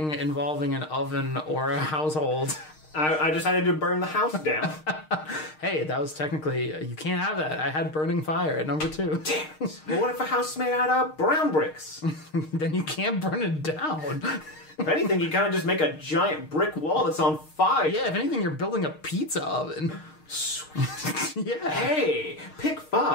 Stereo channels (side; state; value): right; late; 6.5 ms